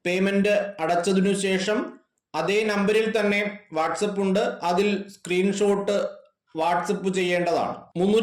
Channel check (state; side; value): identical; both; correlation 1.00